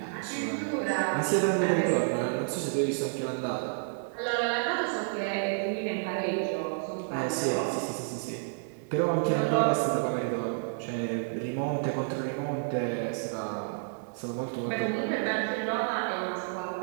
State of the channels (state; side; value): silent; left; digital silence